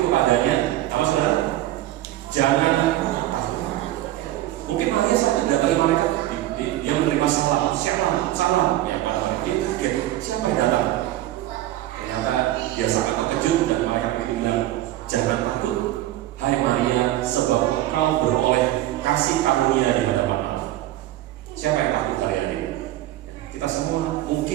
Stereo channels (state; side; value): quieter; left; 14.7 dB